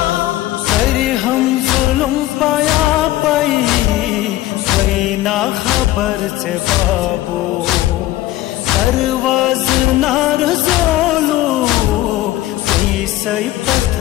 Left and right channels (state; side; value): quieter; right; 15.5 dB